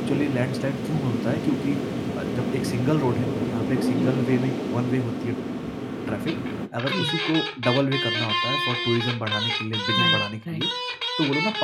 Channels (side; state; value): both; identical; correlation 1.00